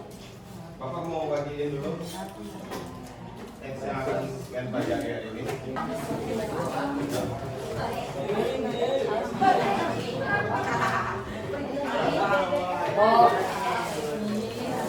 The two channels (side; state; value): both; identical; correlation 1.00